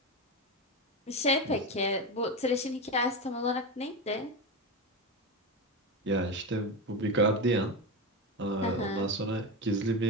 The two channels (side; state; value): both; normal; correlation 0.17